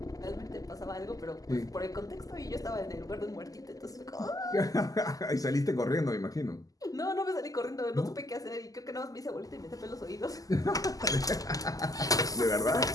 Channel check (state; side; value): late; right; 0.17 ms